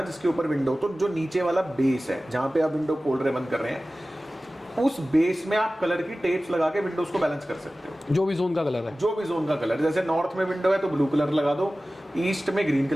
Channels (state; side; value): normal; both; correlation 0.96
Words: जिसके ऊपर विंडो, तो जो नीचे वाला बेस है जहां पे आप विंडो खोल रहे बंद कर रहे हैं, उस बेस में आप कलर की टेप्स लगा के विंडोज को बैलेंस कर सकते हो। जो भी जोन का कलर है, जो भी जोन का कलर, जैसे नॉर्थ में विंडो है तो ब्लू कलर लगा दो, ईस्ट में ग्रीन